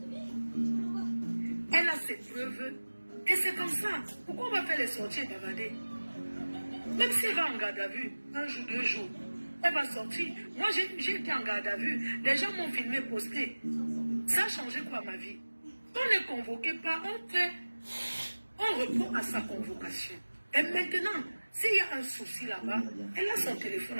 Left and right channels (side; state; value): both; inverted; correlation -1.00